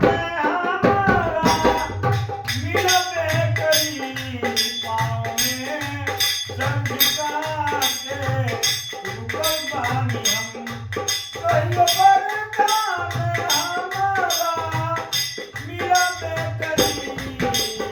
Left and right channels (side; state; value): both; identical; correlation 1.00